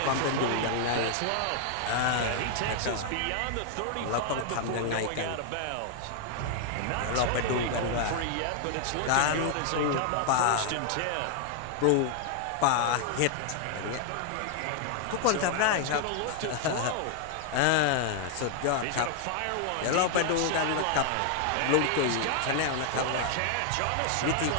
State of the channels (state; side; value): different; both; correlation 0.00